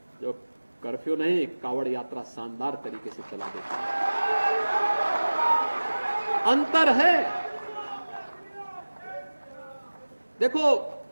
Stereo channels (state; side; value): inverted; both; correlation -1.00